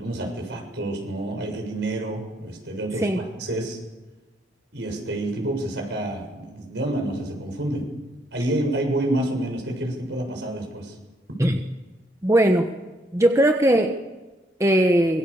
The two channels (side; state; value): both; normal; correlation 0.72